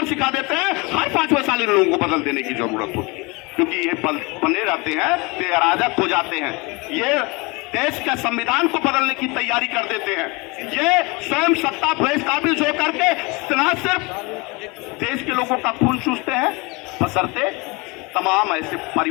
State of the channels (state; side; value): quieter; right; 26.7 dB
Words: सिखा देते हैं। हर 5वें साल इन लोगों को बदल देने की जरूरत होती है, क्योंकि ये बने रहते हैं तो ये अराजक हो जाते हैं। ये देश के संविधान को बदलने की तैयारी कर देते हैं। ये स्वयं सत्ता प्रेस काबिज होकर के न सिर्फ देश के लोगों का खून चूसते हैं, बशर्ते तमाम ऐसे